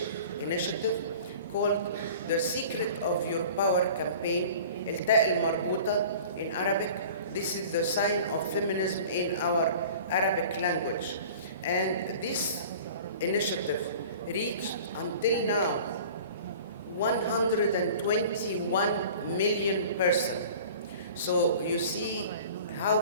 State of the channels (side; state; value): both; inverted; correlation -0.43